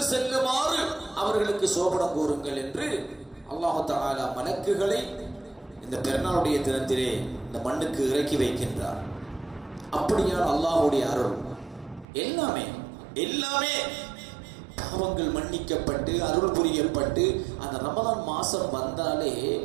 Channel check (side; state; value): left; drops out; at 12.1 s